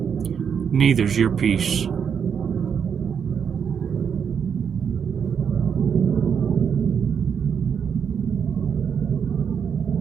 Neither's your peace.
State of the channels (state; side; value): quieter; left; 7.2 dB